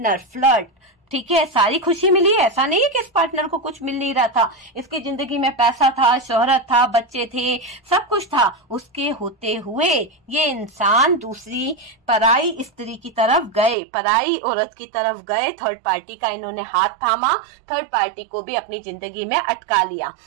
फ्लर्ट, ठीक है, सारी खुशी मिली। ऐसा नहीं है कि इस पार्टनर को कुछ मिल नहीं रहा था, इसकी जिंदगी में पैसा था, शोहरत था, बच्चे थे, सब कुछ था। उसके होते हुए ये इंसान दूसरी पराई स्त्री की तरफ गए, पराई औरत की तरफ गए। थर्ड पार्टी का इन्होंने हाथ थामा, थर्ड पार्टी को भी अपनी जिंदगी में अटका लिया।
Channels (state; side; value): drops out; left; at 13.8 s